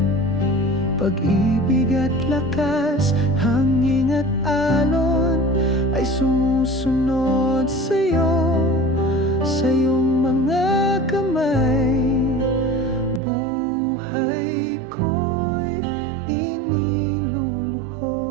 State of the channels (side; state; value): left; drops out; at 13.2 s